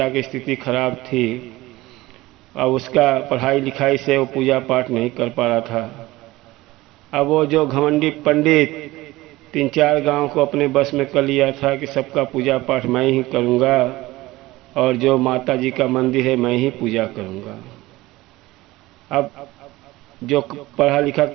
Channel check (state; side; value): quieter; left; 18.9 dB